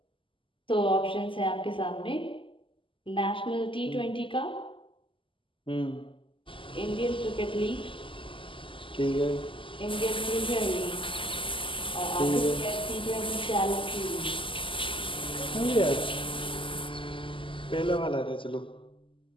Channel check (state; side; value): late; right; 0.25 ms